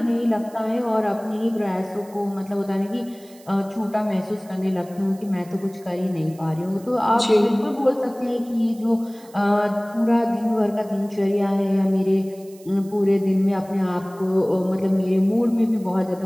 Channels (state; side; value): noise; right; hiss, 25 dB below the sound